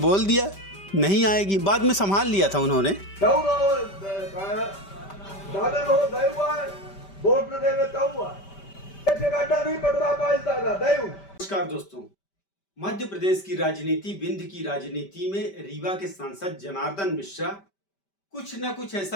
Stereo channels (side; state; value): right; late; 5.1 ms